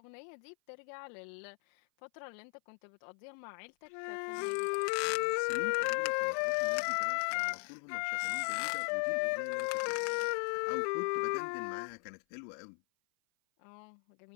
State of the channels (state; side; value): silent; right; 53 dB below the other